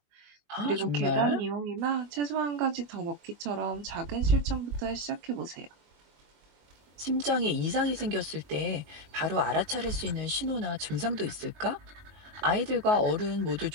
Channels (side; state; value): left; late; 21 ms